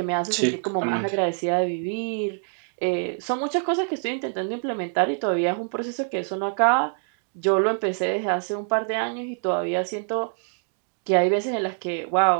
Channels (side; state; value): left; silent; 60 dB below the other